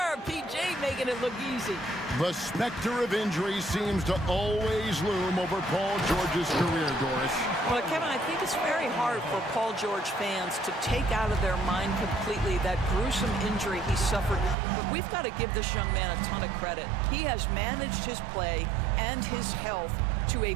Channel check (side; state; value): left; drops out; at 14.6 s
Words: PJ making it look easy. The specter of injury seems to always loom over Paul George's career, Doris. Well, Kevin, I think it's very hard for Paul George fans to take out of their mind completely that gruesome injury he suffered. But we've got to give this young man a ton of credit. He has managed his play and his health to a